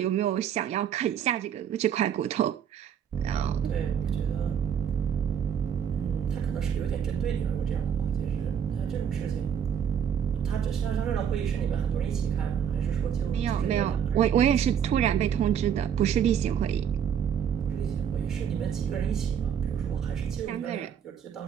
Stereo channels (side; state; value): left; quieter; 8.4 dB